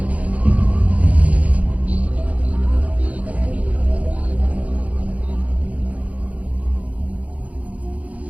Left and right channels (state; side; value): late; left; 0.068 ms